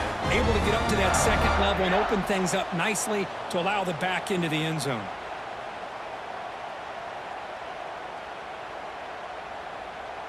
able to get up to that second level and open things up nicely to allow the back into the end zone.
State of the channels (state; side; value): identical; both; correlation 1.00